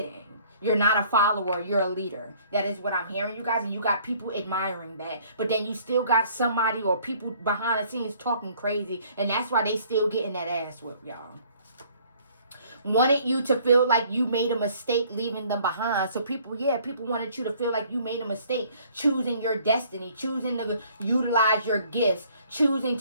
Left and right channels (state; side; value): inverted; both; correlation -0.58